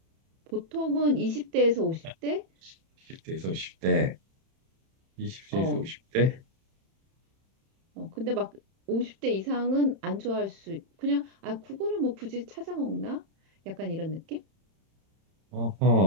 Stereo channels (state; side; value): late; left; 31 ms